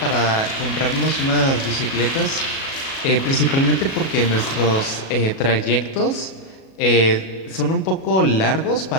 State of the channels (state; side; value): late; right; 37 ms